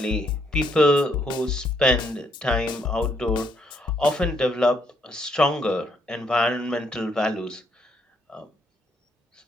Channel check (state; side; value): normal; both; correlation 0.72